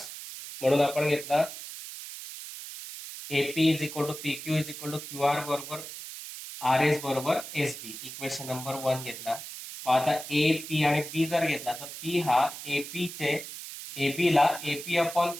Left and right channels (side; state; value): right; noise; hiss, 11 dB below the sound